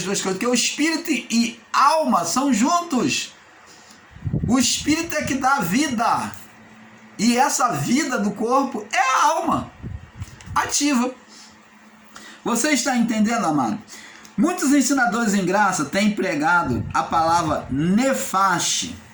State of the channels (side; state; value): both; identical; correlation 1.00